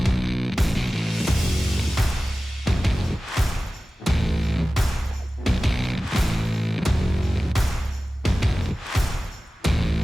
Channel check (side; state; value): both; normal; correlation 0.96